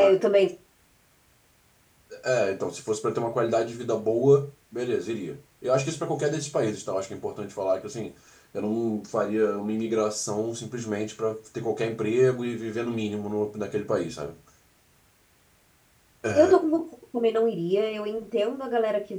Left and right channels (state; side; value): identical; both; correlation 1.00